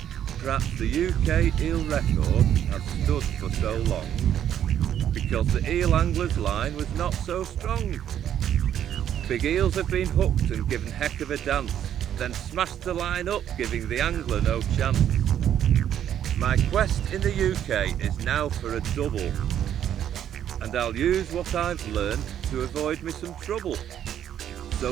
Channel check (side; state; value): left; quieter; 10.2 dB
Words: Perhaps the UK eel record has stood for so long because the eel angler's line was not so strong. Big eels have been hooked and given heck of a dance, then smashed the line up, giving the angler no chance. My quest in the UK is now for a double, and I'll use what I've learned to avoid me some trouble.